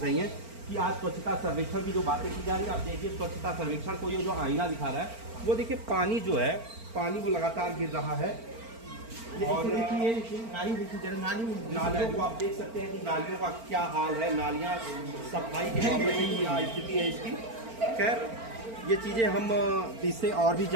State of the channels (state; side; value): late; left; 4.4 ms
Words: हैं। कि आज स्वच्छता सर्वेक्षण की जो बातें की जा रही है, आप देखिए स्वच्छता सर्वेक्षण को ये जो आईना दिखा रहा है, वो देखिए पानी जो है, पानी वो लगातार गिर रहा है। और देखिए नाली देखिए जरा, नालियों को आप देख सकते हैं कि नालियों का क्या हाल है, नालियाँ सफाई के मामले में क्या स्थिति है इसकी। खैर ये चीज़ें हम इससे और भी